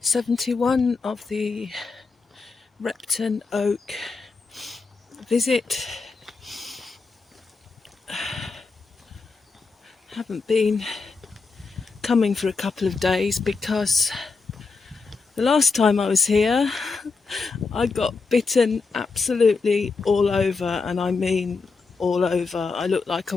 71 of the Repton Oak visit. Haven't been coming for a couple of days because the last time I was here I got bitten absolutely all over, and I mean all over. I look like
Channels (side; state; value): right; quieter; 4.4 dB